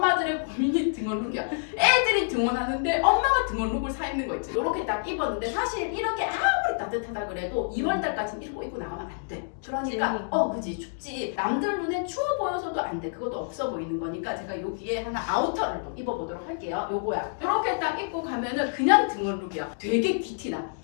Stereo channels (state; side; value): silent; right; digital silence